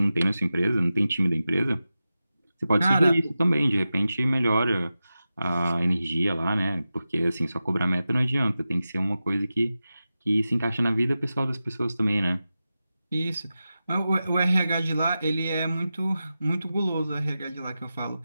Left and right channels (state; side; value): inverted; both; correlation -0.93